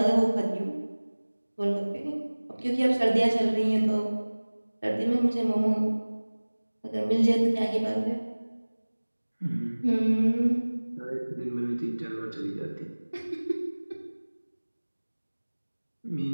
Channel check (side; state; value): both; inverted; correlation -1.00